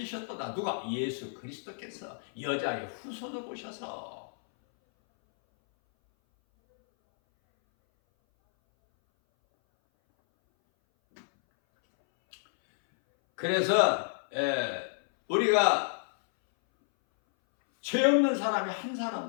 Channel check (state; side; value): silent; right; 58 dB below the other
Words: 누가? 예수 그리스도께서 여자의 후손을 오셔서. 그래서 우리가 죄 없는 사람이 한